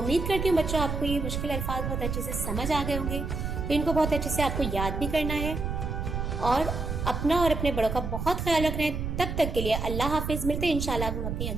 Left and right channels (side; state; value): right; noise; rumble, 3 dB below the sound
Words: کرتی ہوں بچوں آپ کو یہ مشکل الفاظ بہت اچھے سے سمجھ آ گئے ہوں گے۔ تو ان کو بہت اچھے سے آپ کو یاد بھی کرنا ہے، اور اپنا اور اپنے بڑوں کا بہت خیال رکھنا ہے۔ تب تک کے لیے اللہ حافظ، ملتے ہیں انشاءاللہ ہم اپنی